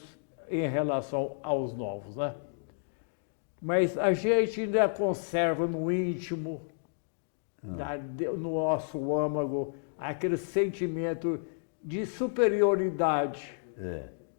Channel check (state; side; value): silent; right; digital silence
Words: em relação aos novos, né? Mas a gente ainda conserva no íntimo, no nosso âmago, aquele sentimento de superioridade.